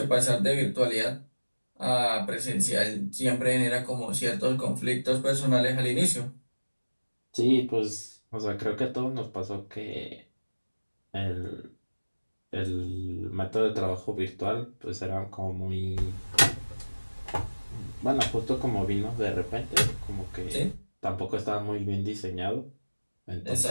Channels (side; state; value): both; inverted; correlation -1.00